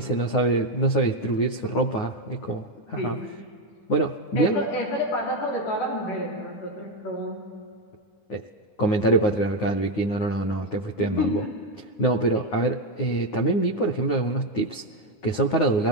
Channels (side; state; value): right; late; 9.6 ms